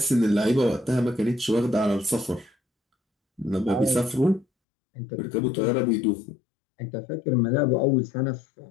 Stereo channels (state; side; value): drops out; right; at 4.5 s